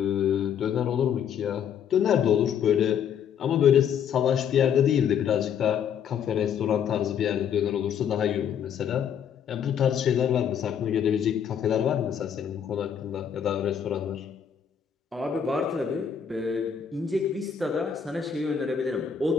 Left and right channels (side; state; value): right; quieter; 8.1 dB